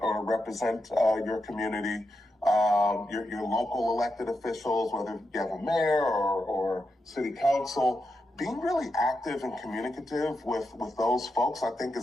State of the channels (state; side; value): normal; both; correlation 0.86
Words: or represent your community. Your local elected officials, whether you have a mayor or city council, being really active and communicative with those folks, I think,